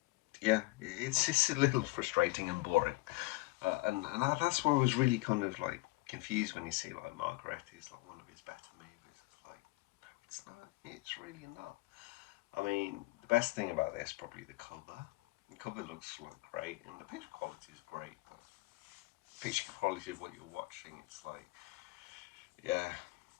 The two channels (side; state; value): right; quieter; 22.2 dB